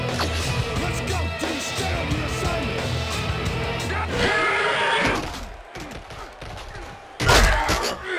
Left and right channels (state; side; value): identical; both; correlation 1.00